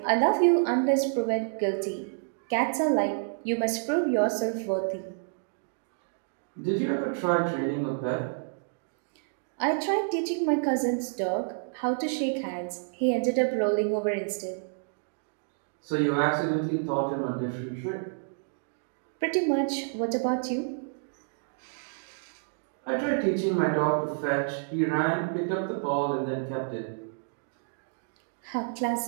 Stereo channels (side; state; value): left; silent; digital silence